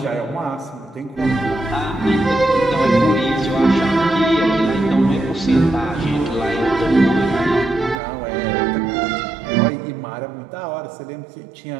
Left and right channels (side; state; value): left; drops out; at 8.0 s